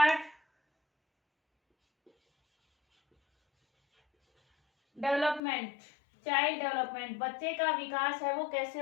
Development, child development, बच्चे का विकास है वो कैसे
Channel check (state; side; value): drops out; right; at 5.4 s